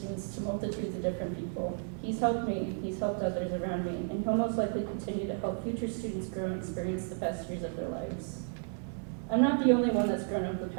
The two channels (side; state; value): left; silent; 56 dB below the other